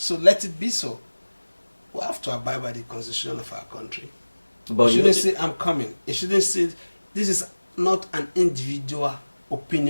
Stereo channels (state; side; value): inverted; both; correlation -1.00